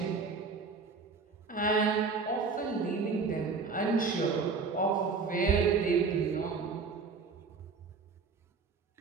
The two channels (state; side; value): quieter; left; 4.8 dB